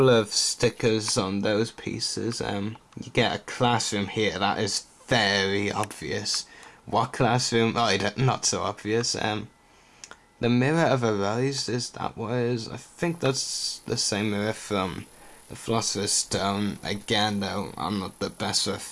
of stickers on those pieces. You get a classroom here. That is very obvious. What classroom? Oh, not so obvious. The Mirror of Arise, is that what it is? I think that's the same mirror from the Philosopher's Stone. Again, though, I'm not the best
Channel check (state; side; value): identical; both; correlation 1.00